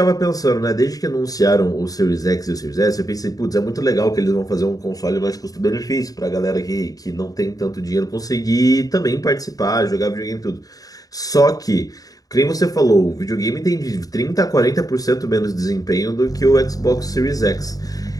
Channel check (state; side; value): late; right; 0.18 ms